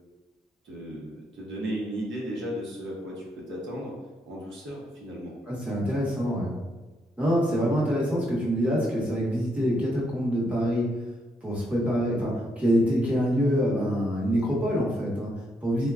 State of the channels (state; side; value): normal; both; correlation 0.77